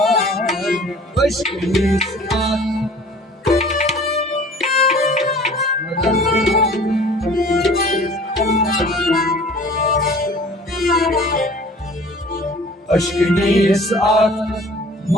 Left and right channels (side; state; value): both; normal; correlation 0.48